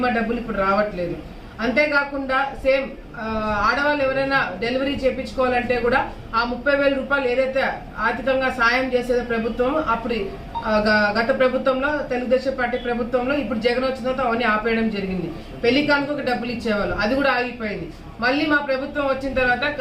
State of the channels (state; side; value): identical; both; correlation 1.00